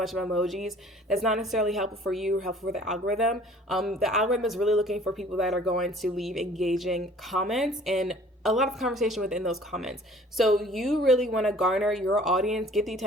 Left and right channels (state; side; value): normal; both; correlation 0.52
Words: of emojis. That's not necessarily helpful for you or helpful for the algorithm. The algorithm is really looking for people that are going to leave engaging comments and a lot of conversation within those comments. So you really want to garner your audience, get the